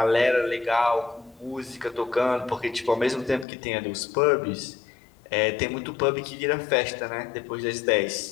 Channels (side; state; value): right; drops out; at 3.5 s